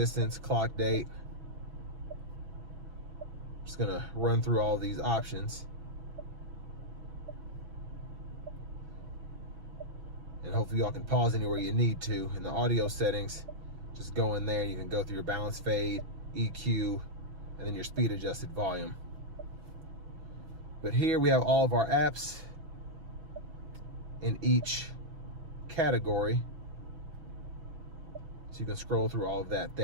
clock date. Just gonna run through all these options. And hopefully y'all can pause anywhere you need to. In the audio settings, just go in there, you can go through your balance fade, EQ, and then your speed adjusted volume. But here we have all of our apps in each category. So you can scroll through all of that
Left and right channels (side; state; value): left; late; 6.2 ms